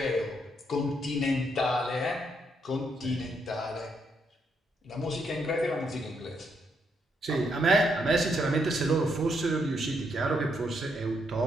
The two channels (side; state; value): both; normal; correlation 0.76